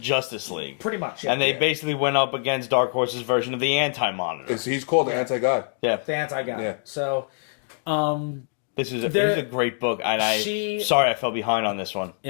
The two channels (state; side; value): silent; right; digital silence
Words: League. Pretty much. And they Yeah. basically went up against Dark Horse's version of the Anti-Monitor. He's called the Anti-God. Yeah. the anti-guy. Yeah. So, This is a great book. And sorry I fell behind on this one.